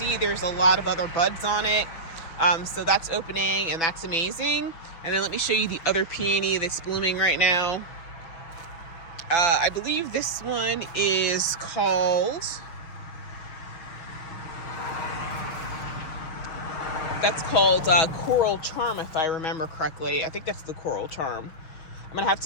there's a lot of other buds on it. So that's opening, and that's amazing. And then let me show you the other peony that's blooming right now. I believe this one is called... That's called Coral Charm, if I remember correctly. I think that's the Coral Charm. I'm gonna have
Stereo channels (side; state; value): right; late; 6.1 ms